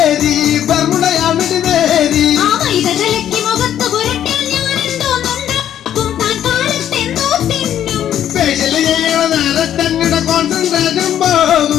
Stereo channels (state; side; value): quieter; right; 10.6 dB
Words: ബർമുടയാവിടി മേരി. ആ മൈദ കലക്കി മുഖത്ത് പുരട്ടിയാൽ ഞാൻ എന്തോന്നുണ്ടാക്കും, താൻ കാലത്തെന്തോ തിന്നും. സ്പെഷ്യൽ ചെയ്യണ നേരത്തങ്ങളുടെ കോൺസെൻട്രേഷൻ പോകും,